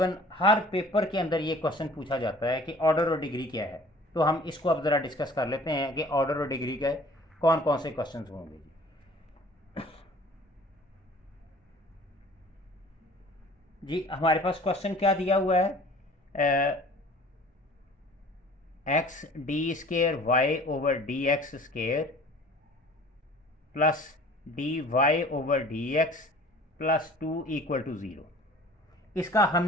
हर पेपर के अंदर ये क्वेश्चन पूछा जाता है कि ऑर्डर और डिग्री क्या है। तो हम इसको अब ज़रा डिस्कस कर लेते हैं कि ऑर्डर और डिग्री के कौन कौन से क्वेश्चन होंगे। जी हमारे पास क्वेश्चन क्या दिया हुआ है, x d square y over d x square plus d y over d x plus 2 equal to 0। इसका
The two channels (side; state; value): both; normal; correlation 0.48